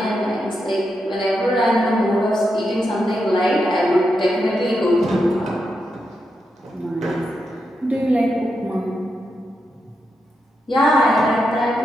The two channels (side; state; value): both; normal; correlation 0.85